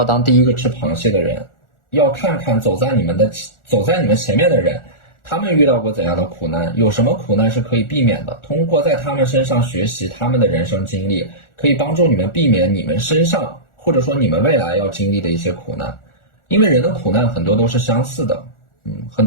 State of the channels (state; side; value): late; right; 1.4 ms